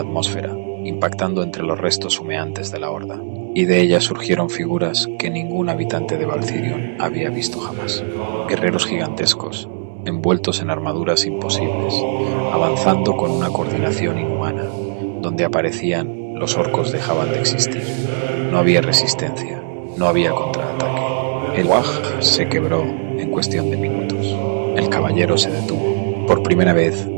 impactando entre los restos humeantes de la horda, y de ellas surgieron figuras que ningún habitante de Valcirion había visto jamás. Guerreros gigantescos, envueltos en armaduras imposibles, avanzando con una coordinación inhumana. Donde aparecían, los orcos dejaban de existir. No había resistencia, no había contraataque. El Waj se quebró en cuestión de minutos. El caballero se detuvo. Por primera vez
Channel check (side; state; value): left; silent; digital silence